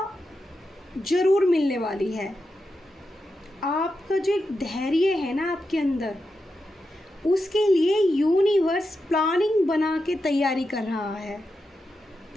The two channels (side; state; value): both; normal; correlation 0.88